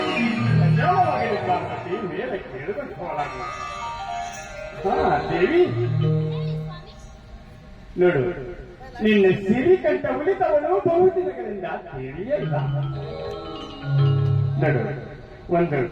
ಪಾರ್ವತಿ ಮೇಲೆ ಕೇಳಿಕೊಂಡು ಹೋಗಲಾಗ. ದೇವಿ ನೋಡು, ನಿನ್ನ ಸಿರಿಕಂಠ ಉಳಿತವಳು ಬಹುದಿನಗಳಿಂದ ತಿಳಿಯಲ್ಲ. ನೋಡು, ಒಂದು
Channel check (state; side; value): identical; both; correlation 1.00